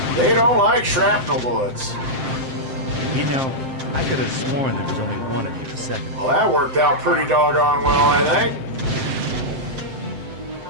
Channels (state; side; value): late; left; 7.6 ms